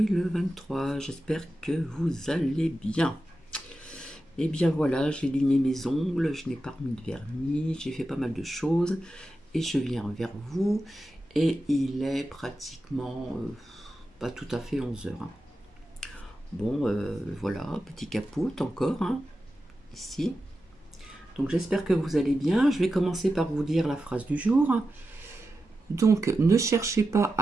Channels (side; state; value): both; normal; correlation 0.91